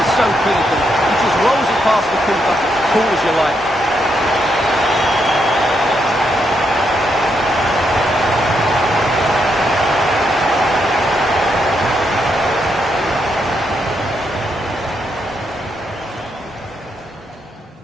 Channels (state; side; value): normal; both; correlation 0.79